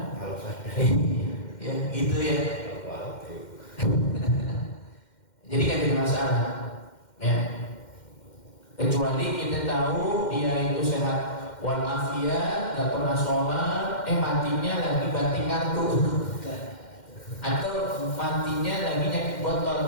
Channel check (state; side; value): late; right; 2.1 ms